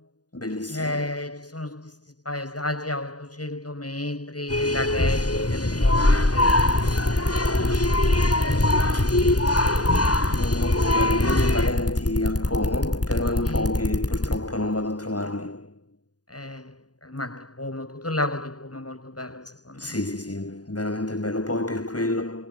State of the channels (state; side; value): late; right; 0.68 ms